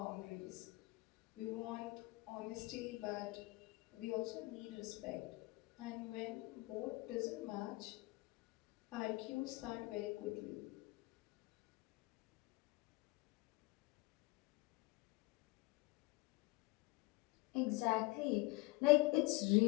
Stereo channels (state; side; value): quieter; right; 22.8 dB